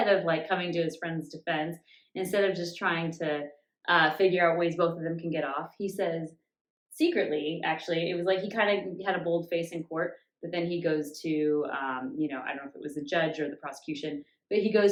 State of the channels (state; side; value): identical; both; correlation 1.00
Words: of like coming to his friend's defense, instead of just trying to figure out ways both of them can get off, he says secretly, actually, it was like he kind of had a bold face in court, but then he goes to, I don't know if it was the judge or the prosecution, but he